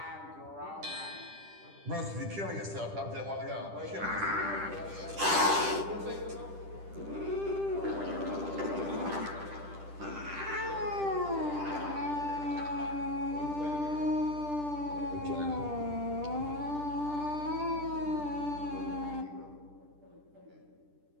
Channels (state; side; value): late; left; 10 ms